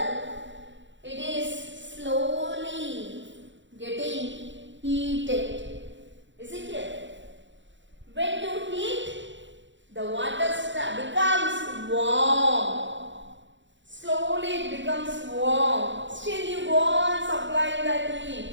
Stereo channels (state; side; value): late; left; 0.54 ms